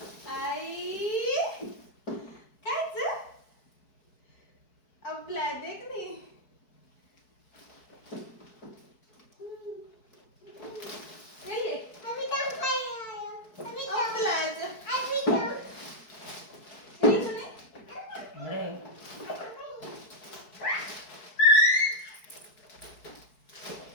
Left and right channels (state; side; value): late; right; 4.6 ms